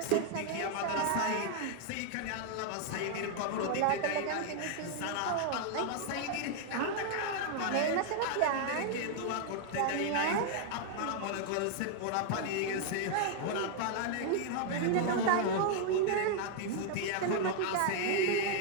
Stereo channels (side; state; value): both; different; correlation 0.00